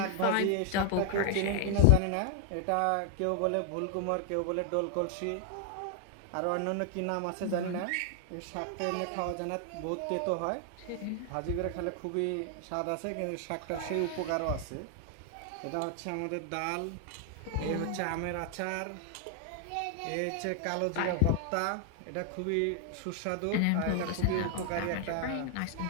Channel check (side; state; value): both; different; correlation 0.00